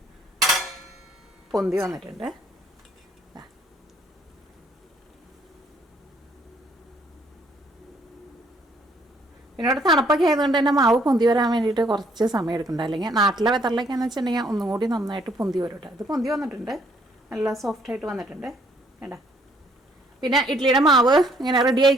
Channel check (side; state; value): both; normal; correlation 0.65